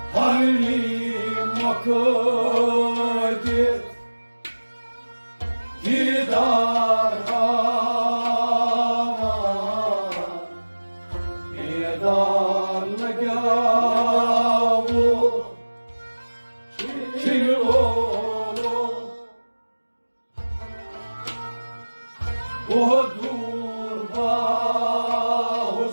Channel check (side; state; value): both; inverted; correlation -1.00